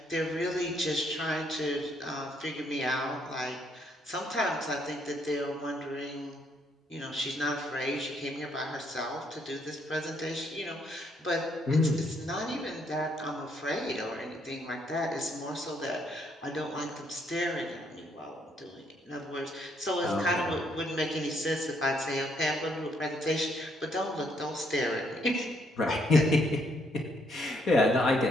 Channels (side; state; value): both; normal; correlation 0.71